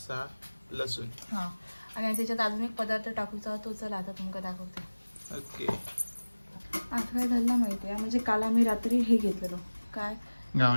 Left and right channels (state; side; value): inverted; both; correlation -1.00